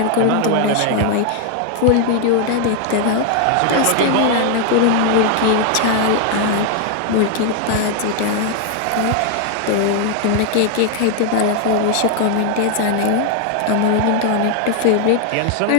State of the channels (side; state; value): both; different; correlation 0.00